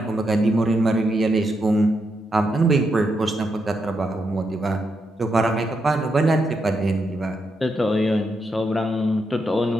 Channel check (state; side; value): normal; both; correlation 0.82